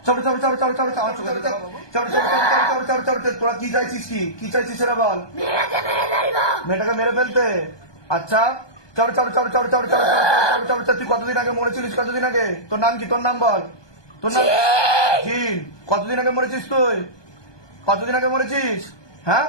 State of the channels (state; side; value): late; right; 1.2 ms